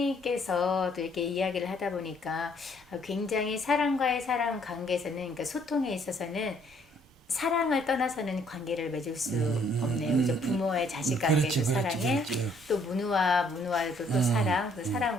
또 이렇게 이야기를 하다 보니까 굉장히 사람과의 사람 관계에서는, 그러니까 소통에 있어서는 사랑을 떠나서는 관계를 맺을 수 없네요. 그죠? 부모의 자식 관계도 그렇지, 그렇지, 사랑해, 그렇지. 또 문우와도 또 사랑, 그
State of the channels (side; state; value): both; normal; correlation 0.64